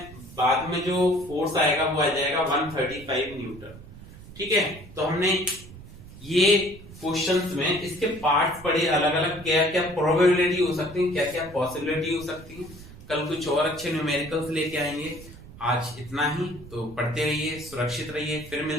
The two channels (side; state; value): right; noise; rumble, 17 dB below the sound